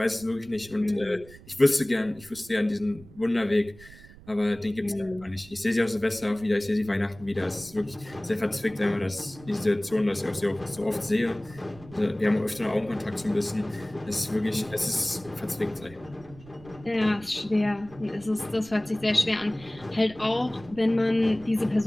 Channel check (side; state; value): right; noise; rumble, 21 dB below the sound